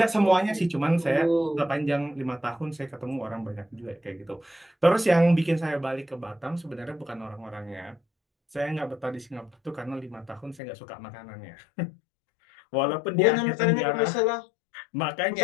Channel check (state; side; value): drops out; right; at 10.6 s